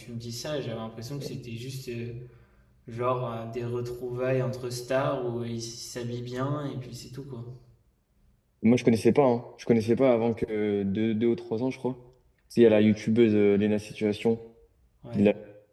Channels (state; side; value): identical; both; correlation 1.00